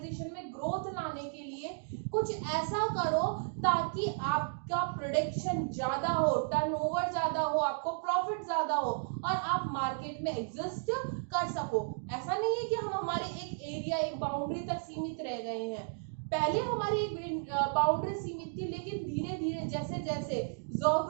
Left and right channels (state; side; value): silent; left; digital silence